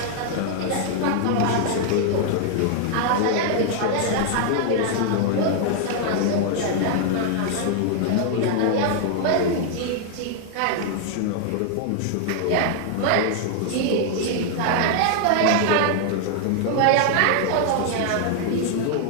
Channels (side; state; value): both; different; correlation 0.00